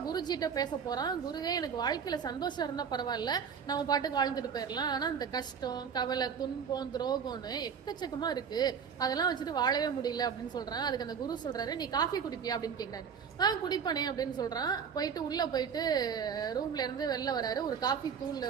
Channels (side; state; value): left; quieter; 6.9 dB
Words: குருஜிட்ட பேச போறான். குருவே, எனக்கு வாழ்க்கையில சந்தோஷம் இருந்தா பரவாயில்ல, நம்ம பாட்டுக்கு வாழ்ந்துட்டு போயிடலாம். ஆனா இந்த கஷ்டம், கவலை, துன்பம், துரோகம்னு எக்கச்சக்கமா இருக்கு, அதெல்லாம் வச்சுட்டு வாழவே முடியல அப்படின்னு சொல்றான். அதுக்கு அந்த குரு சொல்றாரு, நீ காஃபி குடிப்பியா அப்படின்னு கேட்கிறாரு. குடிப்பானே அப்படின்னு சொல்றான். போயிட்டு உள்ள போயிட்டு ரூம்ல இருந்து வெளில வராரு. ஒரு காஃபி